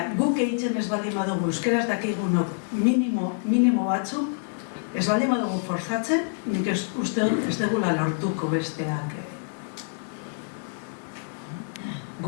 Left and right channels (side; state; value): right; silent; digital silence